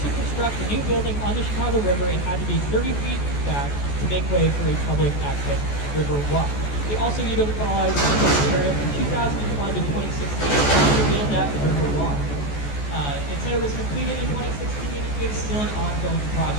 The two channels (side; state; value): right; late; 14 ms